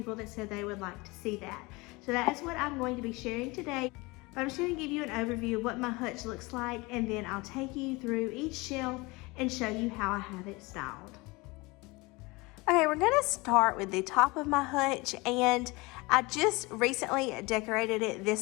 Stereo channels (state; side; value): quieter; right; 24.3 dB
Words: that said they would like to see that. So that is what I'm going to be sharing today. But I'm just going to give you an overview of what my hutch looks like, and then I'll take you through each shelf and show you how I have it styled. Okay, we're gonna start with the top of my hutch, and I just recently decorated it